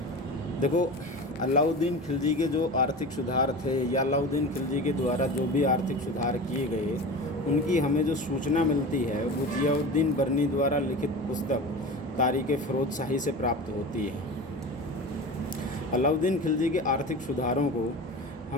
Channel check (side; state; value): both; normal; correlation 0.31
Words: देखो, अलाउद्दीन खिलजी के जो आर्थिक सुधार थे या अलाउद्दीन खिलजी के द्वारा जो भी आर्थिक सुधार किए गए, उनकी हमें जो सूचना मिलती है वो जियाउद्दीन बर्नी द्वारा लिखित पुस्तक तारीख़ फ़िरोज़ शाही से प्राप्त होती है। अलाउद्दीन खिलजी के आर्थिक सुधारों को